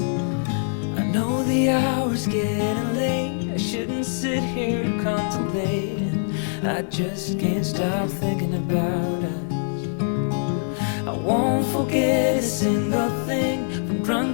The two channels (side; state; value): right; silent; digital silence